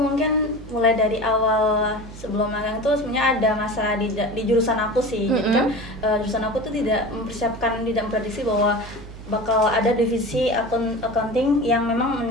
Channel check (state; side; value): noise; right; hum, 16 dB below the sound